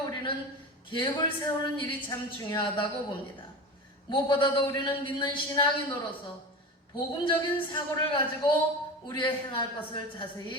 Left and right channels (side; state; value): both; normal; correlation 0.28